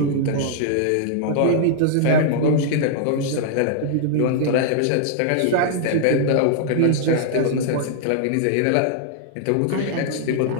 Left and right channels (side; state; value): both; different; correlation -0.01